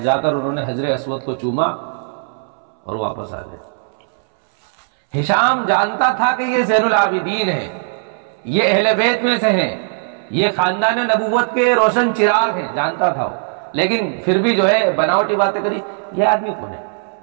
کر انہوں نے حجر اسود کو چوما اور واپس آ گئے۔ ہشام جانتا تھا کہ یہ زین العابدین ہے، یہ اہل بیت میں سے ہیں، یہ خاندان نبوت کے روشن چراغ ہیں، جانتا تھا وہ، لیکن پھر بھی جو ہے بناوٹی باتیں کری۔ یہ آدمی کون ہے،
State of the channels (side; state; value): left; silent; 63 dB below the other